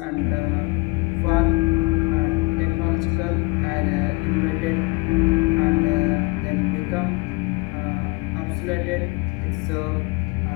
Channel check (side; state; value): right; quieter; 25.4 dB